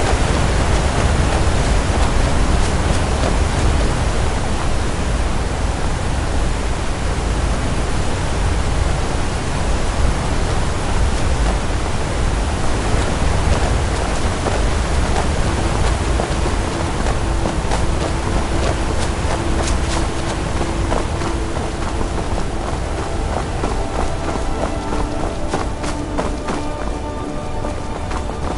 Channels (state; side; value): identical; both; correlation 1.00